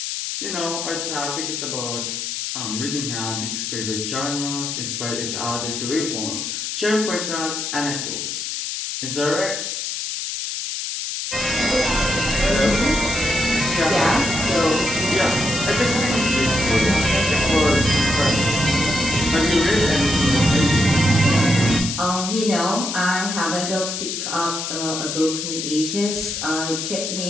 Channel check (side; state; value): left; noise; hiss, 4 dB below the sound